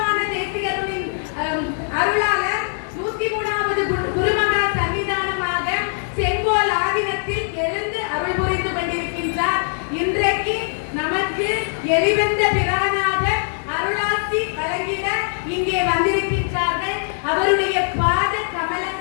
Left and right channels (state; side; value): silent; right; digital silence